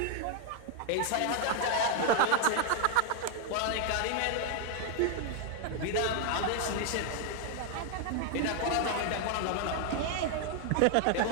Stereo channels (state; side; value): different; both; correlation 0.00